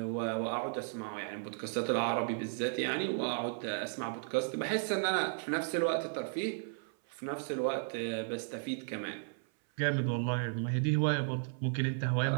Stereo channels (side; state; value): left; silent; 55 dB below the other